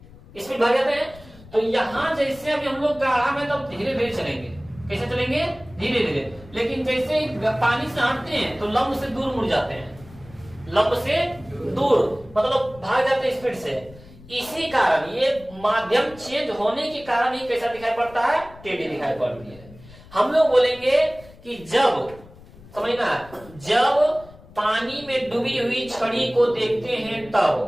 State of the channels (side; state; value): left; noise; rumble, 21 dB below the sound